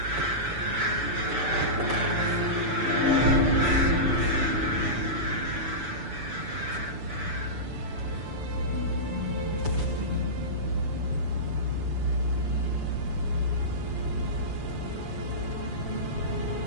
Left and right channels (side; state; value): left; late; 6.9 ms